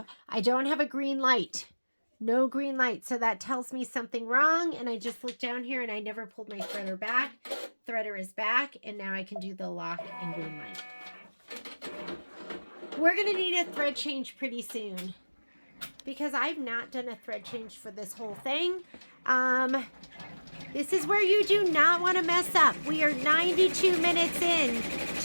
I don't have a green light. No green light. So that tells me something wrong. And I just looked down here and I never pulled my threader back. Threader is back. And now I can do the lock and green light. We're going to need a thread change pretty soon, because I've not done a thread change for this whole thing. This is where you do not want to mess up. We are 92 minutes in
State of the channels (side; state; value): both; inverted; correlation -1.00